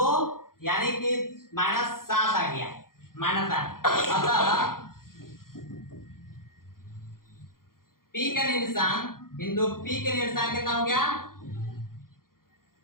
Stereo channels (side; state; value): right; late; 0.92 ms